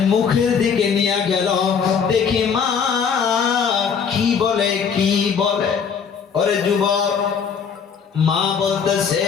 মুখের দিকে নিয়ে গেল, দেখি মা কি বলে কি বলে। ওরে যুবক, মা বলতেছে,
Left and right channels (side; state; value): right; quieter; 6.6 dB